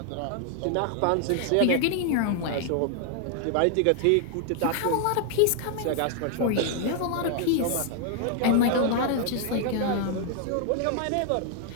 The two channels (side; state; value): both; different; correlation 0.00